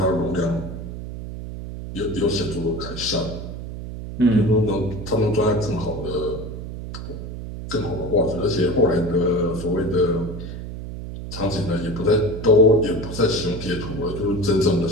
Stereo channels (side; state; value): right; noise; hum, 9 dB below the sound